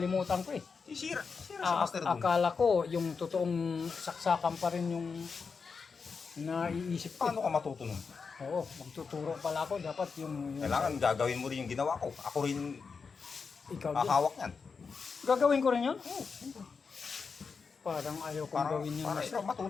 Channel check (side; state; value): right; quieter; 5.3 dB